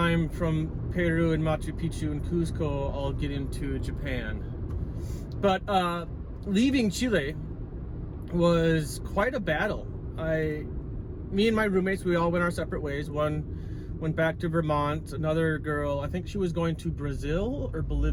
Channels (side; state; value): both; identical; correlation 1.00